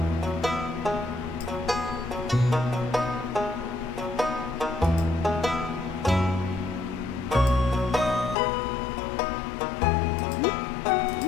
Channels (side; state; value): right; drops out; at 8.3 s